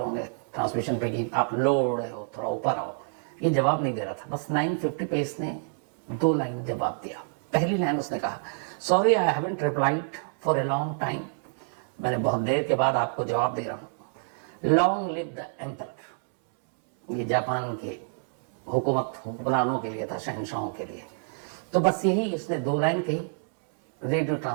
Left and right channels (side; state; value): left; silent; 60 dB below the other